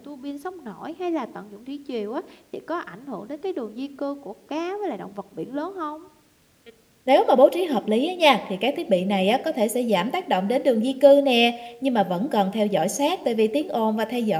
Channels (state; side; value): identical; both; correlation 1.00